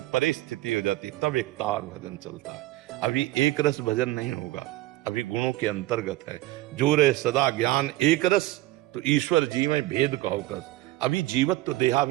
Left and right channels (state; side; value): quieter; left; 17.3 dB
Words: परिस्थिति हो जाती है, तब एक तार भजन चलता है। अभी एक रस भजन नहीं होगा, अभी गुणों के अंतर्गत है। जो रहे सदा ज्ञान एक रस, तो ईश्वर जी में भेद कहो कर। अभी जीवत्व